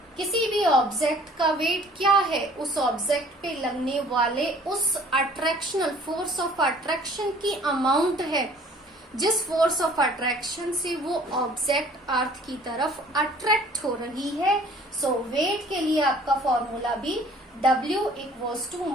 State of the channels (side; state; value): both; normal; correlation 0.53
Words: किसी भी ऑब्जेक्ट का वेट क्या है, उस ऑब्जेक्ट पे लगने वाले उस अट्रैक्शनल फोर्स ऑफ अट्रैक्शन की अमाउंट है, जिस फोर्स ऑफ अट्रैक्शन से वो ऑब्जेक्ट अर्थ की तरफ अट्रैक्ट हो रही है। सो वेट के लिए आपका फॉर्मूला भी W equals to